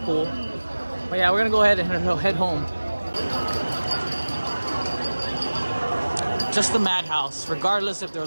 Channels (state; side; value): inverted; both; correlation -1.00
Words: cool. But yeah, we're gonna go ahead and head home. Just the madhouse, regardless if there